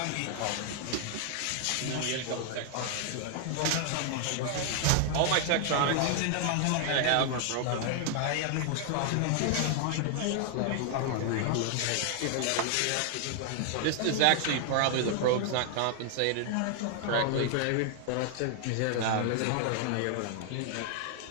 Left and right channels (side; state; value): both; different; correlation 0.00